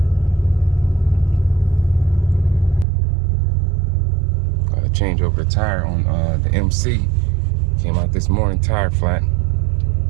Gotta change over the tire on the MC. Came out this morning, tire flat.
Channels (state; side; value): drops out; left; at 2.9 s